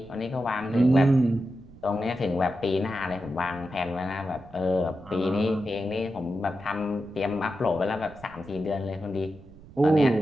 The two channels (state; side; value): noise; right; rumble, 21 dB below the sound